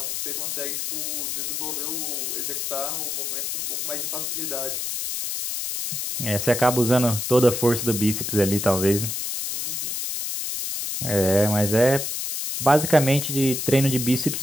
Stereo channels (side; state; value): left; noise; hiss, 3 dB below the sound